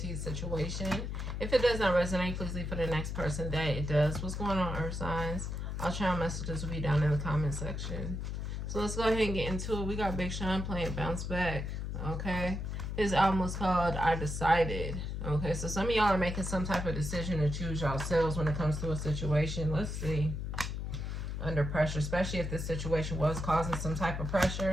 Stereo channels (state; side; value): noise; left; hum, 4 dB below the sound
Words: your situation. If it does not resonate, please leave for the next person that it does. What's going on, Earth signs? I'll try messages will be down in the comment section. So let's go ahead and get into it. We got Big Sean playing Bounce Back. Okay. His album was called I Decided. Okay, so some of y'all are making some type of decision to choose yourselves when it comes to a situation. Let's see. Under pressure, especially if this situation was causing some type of